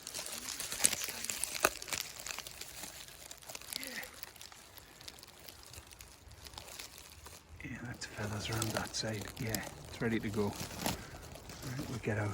Yeah, that's feathers around that side. Yeah, it's ready to go. Right, we'll get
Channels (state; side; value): identical; both; correlation 1.00